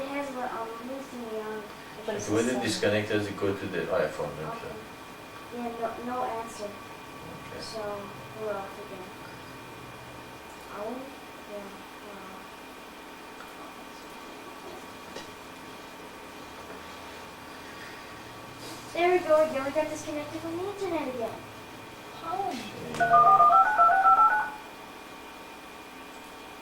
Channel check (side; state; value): both; identical; correlation 1.00